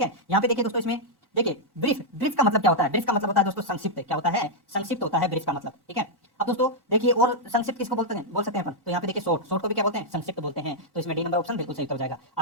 है, यहाँ पे देखिए दोस्तों इसमें देखिए ब्रीफ, ब्रीफ का मतलब क्या होता है? ब्रीफ का मतलब होता है दोस्तों संक्षिप्त। क्या होता है? संक्षिप्त होता है ब्रीफ का मतलब। ठीक है, अब दोस्तों देखिए और संक्षिप्त किसको बोलते हैं? बोल सकते हैं अपन। तो यहाँ पे देखिए शॉर्ट, शॉर्ट को भी क्या बोलते हैं? संक्षिप्त बोलते हैं। तो इसमें डी नंबर ऑप्शन बिल्कुल सही उत्तर हो जाएगा।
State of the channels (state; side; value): normal; both; correlation -0.05